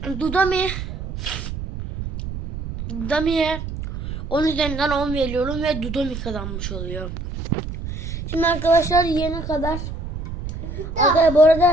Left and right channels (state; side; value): noise; right; rumble, 7 dB below the sound